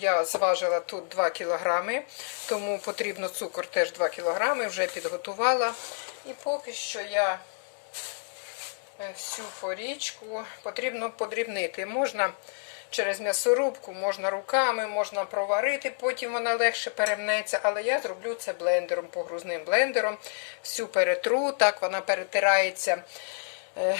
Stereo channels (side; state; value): right; silent; digital silence